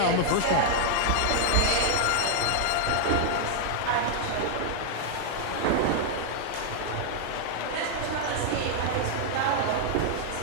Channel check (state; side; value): different; both; correlation 0.00